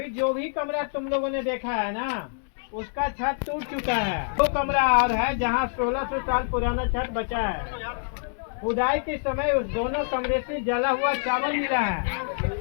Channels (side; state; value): right; silent; digital silence